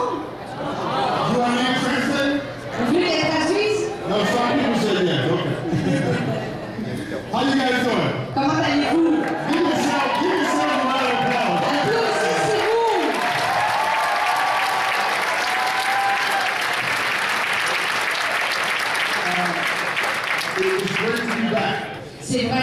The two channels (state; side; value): identical; both; correlation 1.00